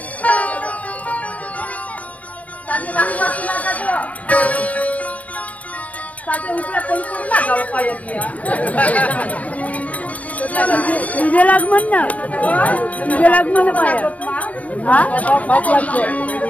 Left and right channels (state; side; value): late; right; 0.070 ms